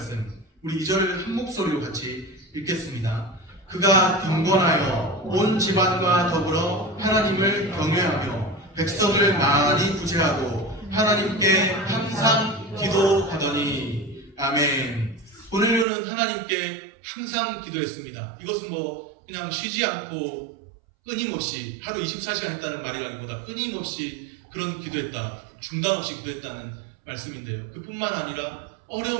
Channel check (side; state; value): left; drops out; at 15.9 s